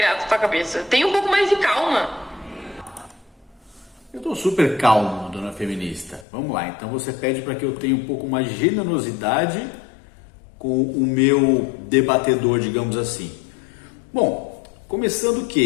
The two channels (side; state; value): right; drops out; at 6.2 s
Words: na tua cabeça. Tenha um pouco mais de calma. Eu tô super calmo, dona feminista. Vamos lá, então você pede para que eu tenha um pouco mais de generosidade com o meu debatedor, digamos assim. Bom, começando